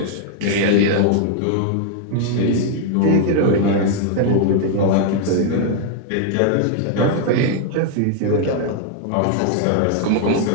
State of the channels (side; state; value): both; different; correlation 0.00